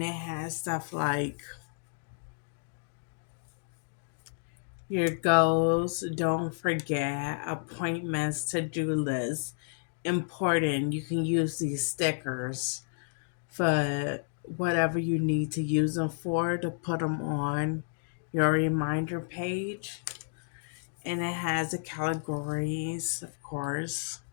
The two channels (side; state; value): right; silent; digital silence